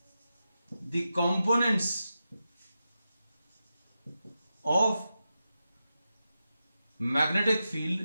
the components of magnetic field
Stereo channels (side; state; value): both; inverted; correlation -0.90